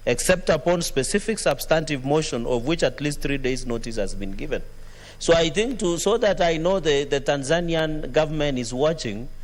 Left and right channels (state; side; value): identical; both; correlation 1.00